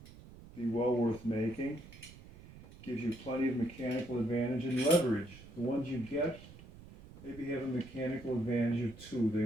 be well worth making. Gives you plenty of mechanical advantage and leverage. The ones you get maybe have a mechanical advantage of 2. They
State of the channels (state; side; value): noise; right; rumble, 18 dB below the sound